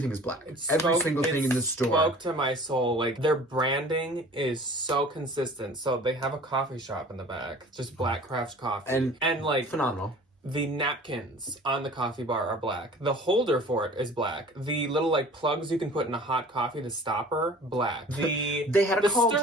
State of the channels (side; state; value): both; normal; correlation 0.45